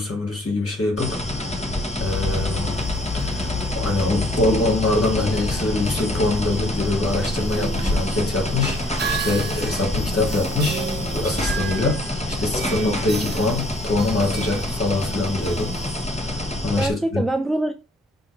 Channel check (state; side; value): normal; both; correlation 0.61